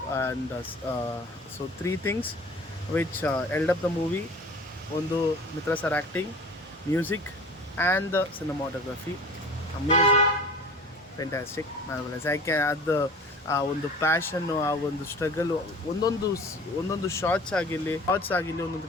And so 3 things which held up the movie. ಒಂದು Mitra sir acting, music and the cinematography. Amazing, fantastic, marvellous. ಯಾಕೆ ಅದು ಆ ಒಂದು ಪ್ಯಾಷನ್ನು, ಆ ಒಂದು ಸ್ಟ್ರಗಲು, ಒಂದೊಂದು ಶಾರ್ಟ್ಸ್ ಆಗಿರಲಿ,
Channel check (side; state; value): both; normal; correlation 0.42